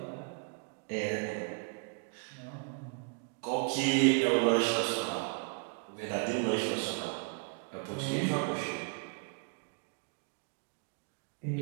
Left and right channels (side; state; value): left; quieter; 38.5 dB